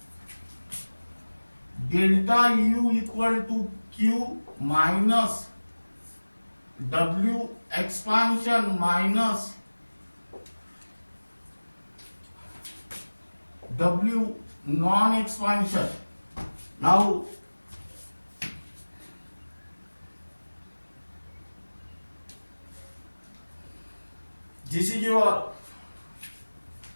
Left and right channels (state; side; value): inverted; both; correlation -1.00